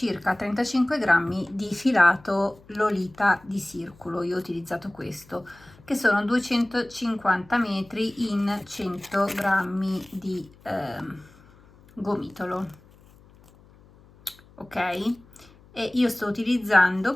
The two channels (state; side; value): noise; left; hum, 26 dB below the sound